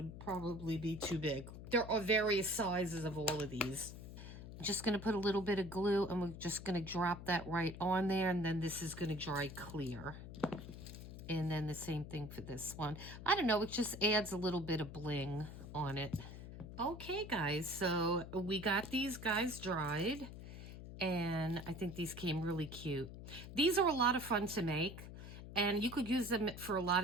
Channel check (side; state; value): left; noise; hum, 11 dB below the sound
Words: probably be too big. There are various sizes of all of these. I'm just going to put a little bit of glue, and we're just going to drop that right on there, and then this is going to dry clear. And then the same thing for this one. I don't know, it just adds a little bit of bling on it. Okay, guys, so we got these guys dried. And I think these came really cute. These are a lot of fun to make, and you could use them for a lot